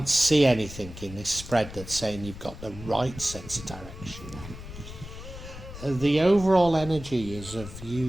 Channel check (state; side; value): noise; left; rumble, 13 dB below the sound